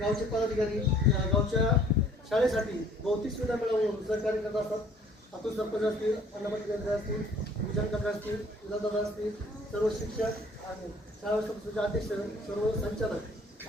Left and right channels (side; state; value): both; normal; correlation 0.56